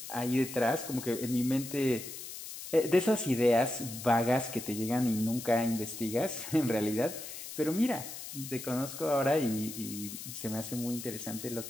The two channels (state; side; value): noise; left; hiss, 10 dB below the sound